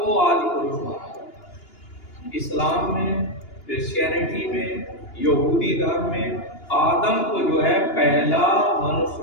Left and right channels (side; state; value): right; late; 2.9 ms